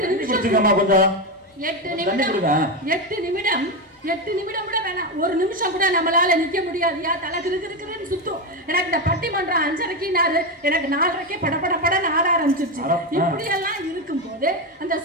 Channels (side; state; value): both; normal; correlation 0.12